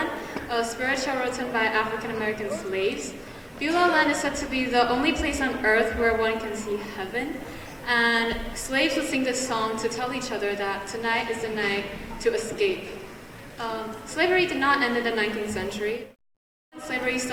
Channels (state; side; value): identical; both; correlation 1.00